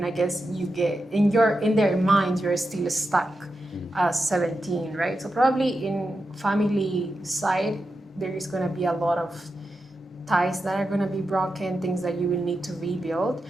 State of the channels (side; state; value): both; normal; correlation 0.89